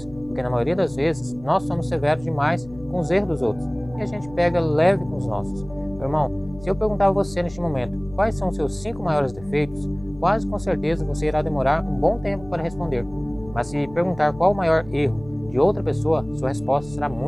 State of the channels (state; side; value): noise; left; hum, 19 dB below the sound